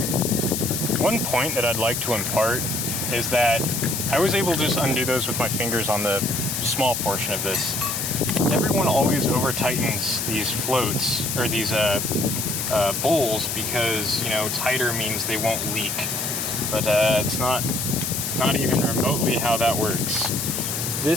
One point that I'd like to impart is that I was able to just undo those with my fingers on the small portion of this. Everyone always over tightens these floats, or these bowls, because, you know, tighter means they won't leak. But it's not even remotely how that works.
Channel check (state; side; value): noise; left; hiss, 2 dB below the sound